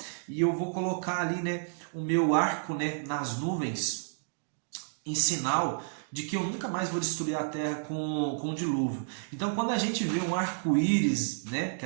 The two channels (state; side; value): silent; left; digital silence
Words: e eu vou colocar ali, né, o meu arco, né, nas nuvens, em sinal de que eu nunca mais vou destruir a terra com o dilúvio. Então, quando a gente vê um arco-íris, né, que